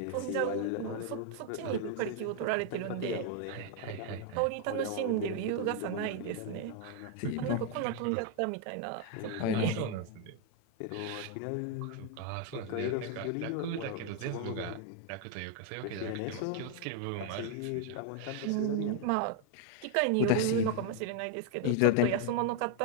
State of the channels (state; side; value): different; both; correlation 0.00